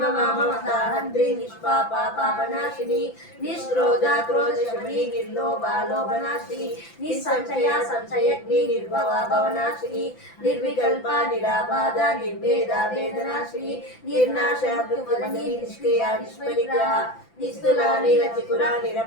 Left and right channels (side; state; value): right; late; 5.9 ms